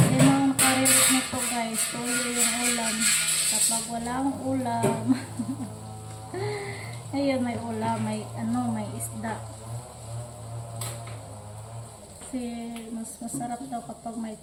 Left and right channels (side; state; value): both; identical; correlation 1.00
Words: naman nakarelate nito guys. Tuyo yung ulam. Kapag walang ulam. Ayun, may ulam. May isda. Kasi mas masarap daw kapag may